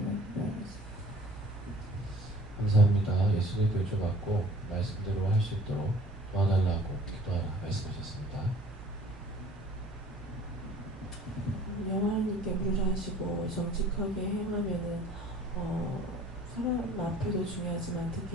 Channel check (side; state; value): both; normal; correlation 0.50